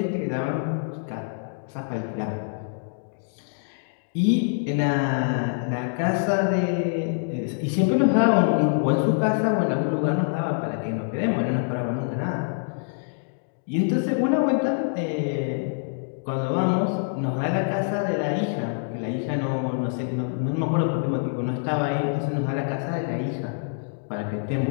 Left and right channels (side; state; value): right; silent; digital silence